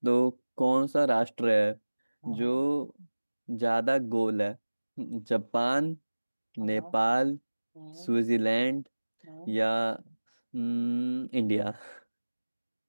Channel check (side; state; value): both; inverted; correlation -1.00